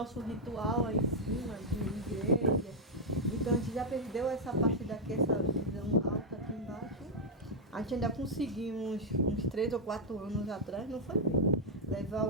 ritual aí em cima de igreja. Então a gente já perdeu essa parte daqui, essa visão alta aqui embaixo. A gente ainda conseguimos, uns 3 ou 4 anos atrás, não foi bem, levar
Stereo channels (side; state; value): both; normal; correlation -0.03